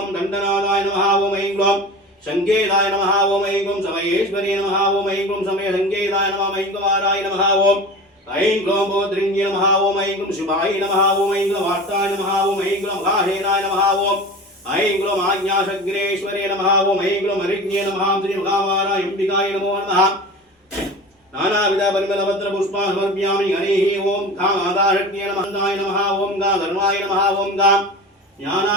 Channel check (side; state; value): both; normal; correlation 0.33